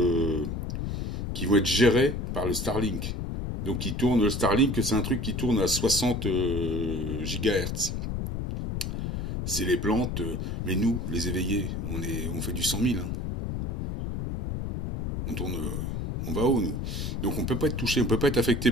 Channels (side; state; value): left; noise; rumble, 2 dB below the sound